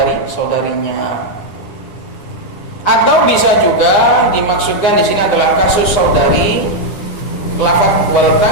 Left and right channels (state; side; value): late; right; 9.7 ms